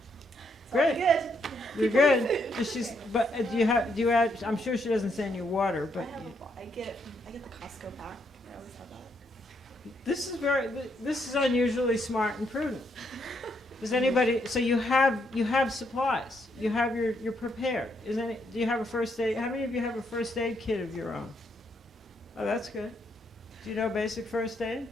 Great. Good. You're good. But do you add, I'm sure she doesn't send you water, but I get the Costco pack. I always have that. this is unusually smart and prudent. Does anybody, so you have supplies, you're prepared. Do you have a first aid, how many of you have a first aid kit of your own? Oh, that's good. Do you know basic first aid?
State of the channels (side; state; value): both; normal; correlation 0.75